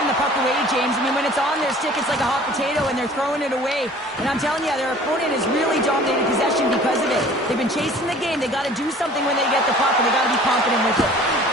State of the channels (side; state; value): both; normal; correlation 0.48